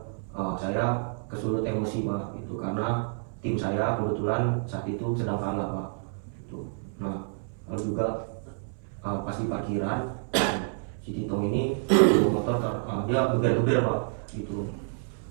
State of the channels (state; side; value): silent; left; 59 dB below the other